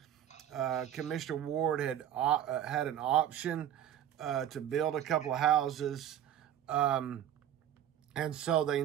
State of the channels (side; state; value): left; quieter; 10.6 dB